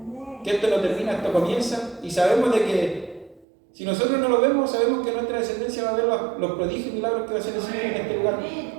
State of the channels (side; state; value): left; drops out; at 3.5 s